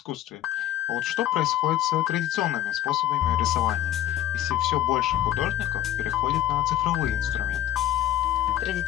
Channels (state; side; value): quieter; right; 12.5 dB